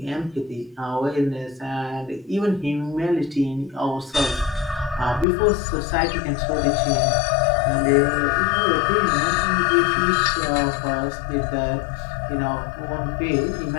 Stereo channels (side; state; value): right; drops out; at 5.2 s